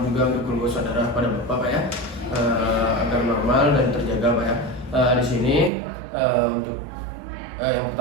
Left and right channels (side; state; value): left; drops out; at 5.7 s